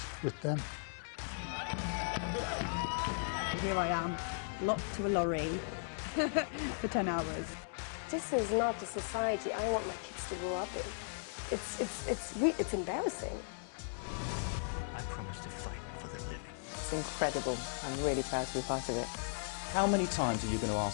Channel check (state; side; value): silent; right; digital silence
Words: with them. Here I am, locked to a lorry for 10 hours. This is not the society I want my kids to grow up in. It's embarrassing. I promise to fight for the living. It's incredible. I'm really proud to be part of it. How many times are you going to